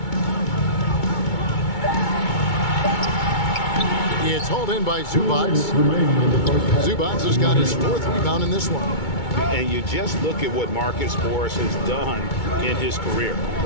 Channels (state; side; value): late; right; 2.2 ms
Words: It's hauled in by Zubac. Zubac has got his 4th rebound in this one. And you just look at what Marcus Morris has done in his career.